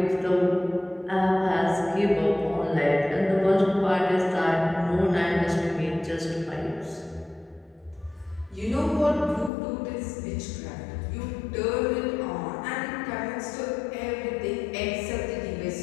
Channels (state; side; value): drops out; right; at 9.5 s